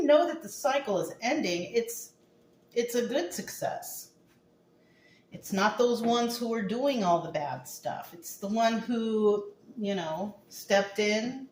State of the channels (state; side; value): identical; both; correlation 1.00